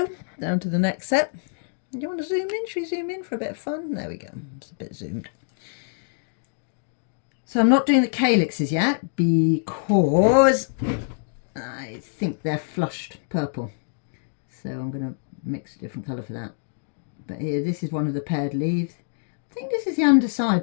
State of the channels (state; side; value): silent; right; digital silence